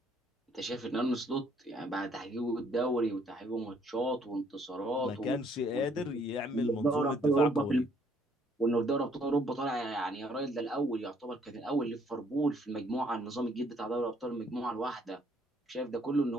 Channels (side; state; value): both; normal; correlation 0.65